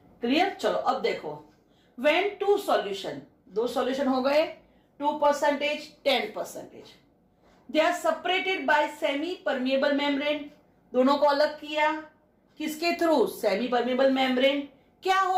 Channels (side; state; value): both; identical; correlation 1.00